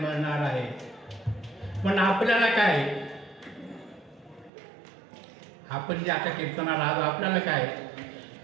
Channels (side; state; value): left; drops out; at 4.5 s